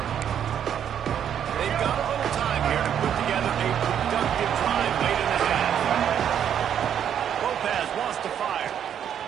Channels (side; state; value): left; quieter; 9.1 dB